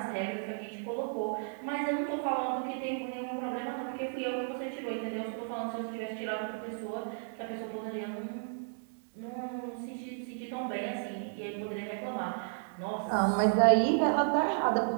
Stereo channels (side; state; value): left; silent; digital silence